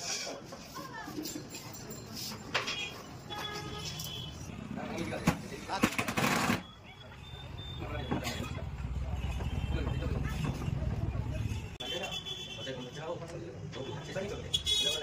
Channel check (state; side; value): identical; both; correlation 1.00